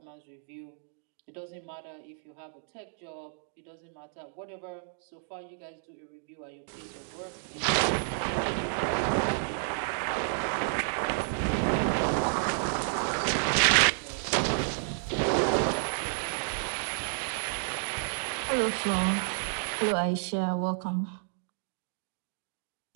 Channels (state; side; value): silent; left; digital silence